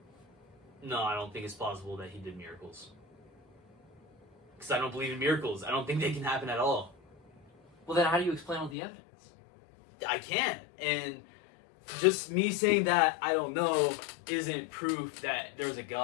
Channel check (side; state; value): right; drops out; at 8.8 s